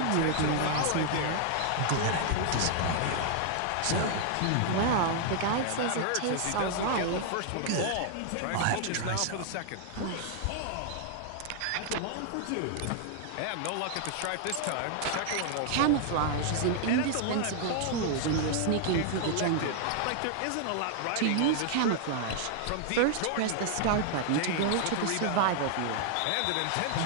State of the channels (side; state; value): both; different; correlation -0.01